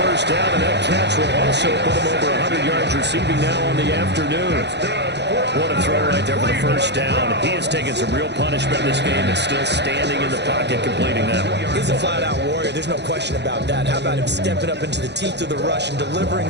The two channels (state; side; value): late; left; 0.50 ms